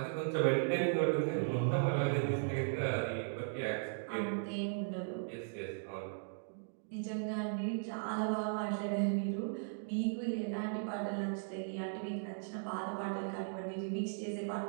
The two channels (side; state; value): left; silent; digital silence